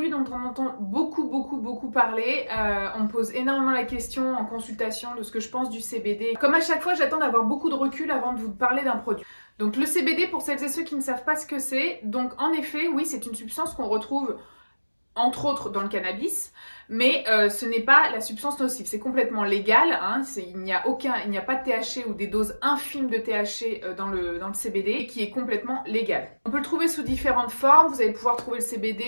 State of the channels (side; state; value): both; inverted; correlation -1.00